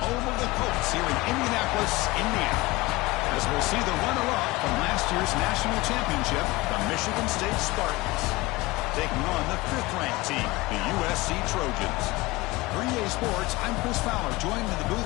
home of the Colts here in Indianapolis, Indiana. As we'll see the runner-up from last year's national championship, the Michigan State Spartans, taking on the 5th-ranked team, the USC Trojans. For EA Sports, I'm Chris Fowler, joined in the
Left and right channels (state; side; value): quieter; right; 21.2 dB